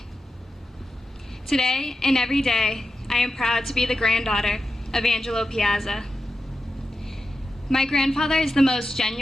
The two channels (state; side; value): normal; both; correlation 0.91